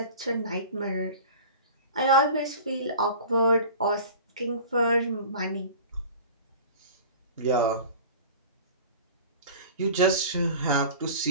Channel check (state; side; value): inverted; both; correlation -0.40